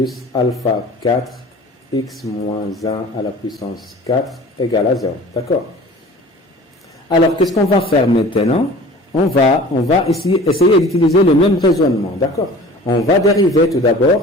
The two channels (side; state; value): both; normal; correlation 0.43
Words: alpha 4 x moins 1 à la puissance 4 égale à 0. D'accord? Alors, qu'est-ce qu'on va faire maintenant? On va essayer d'utiliser le même raisonnement. D'accord? On va dériver tout